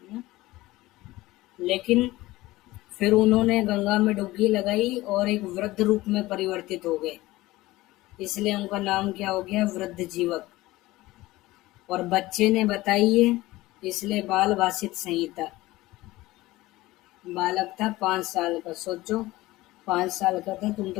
लेकिन फिर उन्होंने गंगा में डुबकी लगाई और एक वृद्ध रूप में परिवर्तित हो गए। इसलिए उनका नाम क्या हो गया, वृद्ध जीवक। और बच्चे ने बताई है, इसलिए बाल भाषित संहिता। बालक था 5 साल का, सोचो 5 साल का था, तुम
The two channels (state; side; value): quieter; right; 18.5 dB